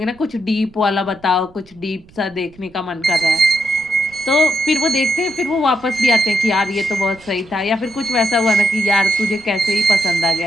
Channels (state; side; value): noise; right; rumble, 25 dB below the sound